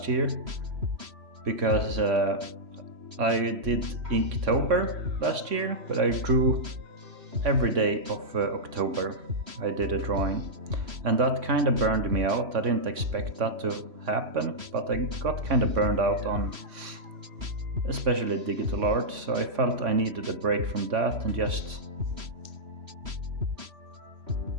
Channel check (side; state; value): left; late; 3.1 ms